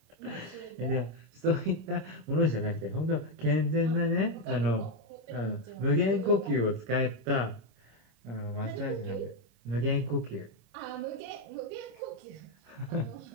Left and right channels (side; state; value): left; late; 25 ms